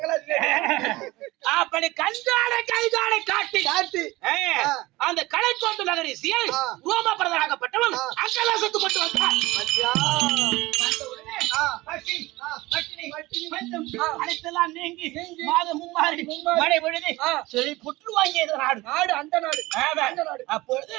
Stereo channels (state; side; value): quieter; left; 20.0 dB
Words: அப்படி கஞ்சாடை கைதாடை காட்டி அந்த கலைக்கோட்டு நகரிசியை ரோமபரதனாகப்பட்டவன் அங்கலாசத்து கொண்டு வந்தான். வந்த உடனே பசி, பட்டினி, பஞ்சம் அனைத்தெல்லாம் நீங்கி மாதம் மும்மாறி மழை பொழுது செழி புற்று வாங்கியது நாடு. அந்த நாடு. அப்பொழுது